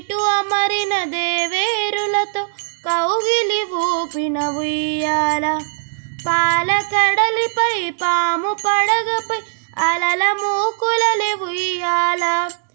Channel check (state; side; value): silent; left; digital silence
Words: అమరిన దేవేరులతో కౌగిలి ఊపిన ఉయ్యాల పాలకడలిపై పాము పడగపై అలల మూకులలే ఉయ్యాల